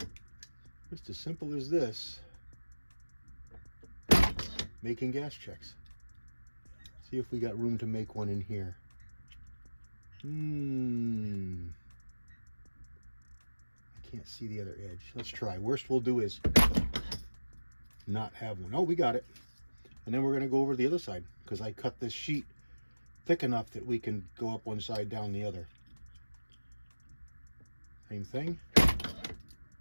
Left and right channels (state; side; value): inverted; both; correlation -1.00